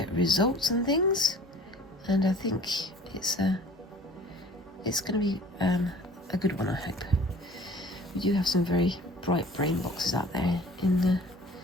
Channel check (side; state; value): both; normal; correlation 0.49